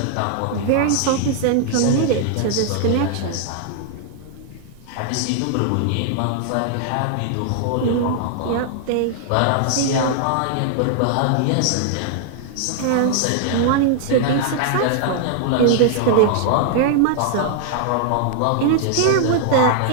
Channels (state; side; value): different; both; correlation -0.01